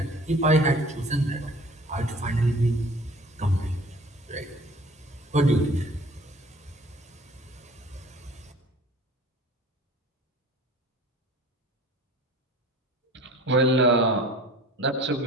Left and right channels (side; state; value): both; normal; correlation 0.47